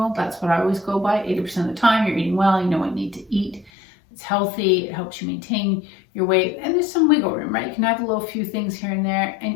That's what I always go by. 80% of the time, you're eating well, you know what you need to eat. It's healthy, it helps you maintain your weight, and there's some wiggle room, right? You can have a little few things here and there, and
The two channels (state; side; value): drops out; right; at 3.7 s